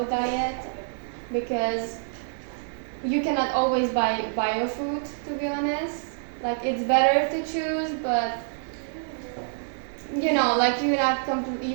diet, because you cannot always buy bio food. To be honest, like it's better to choose, but you know, like you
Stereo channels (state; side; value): silent; left; digital silence